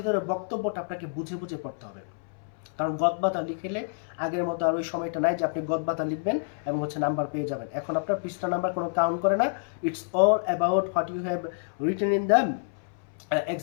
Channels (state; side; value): silent; right; 58 dB below the other